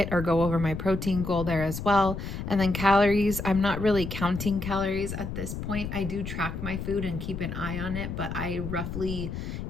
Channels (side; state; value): left; noise; rumble, 6 dB below the sound